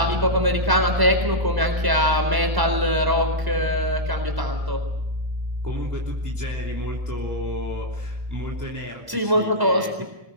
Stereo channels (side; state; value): left; late; 1.0 ms